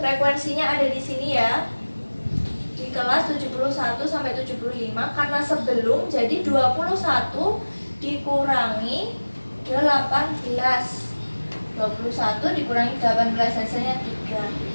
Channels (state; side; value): inverted; both; correlation -1.00